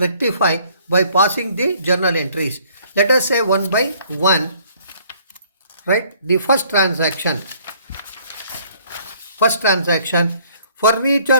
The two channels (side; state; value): both; inverted; correlation -0.60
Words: by passing the journal entries. Let us say one by one. Right? The first transaction,